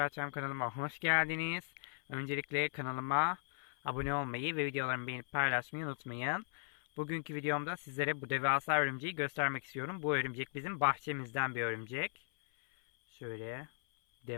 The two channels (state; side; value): silent; right; 53 dB below the other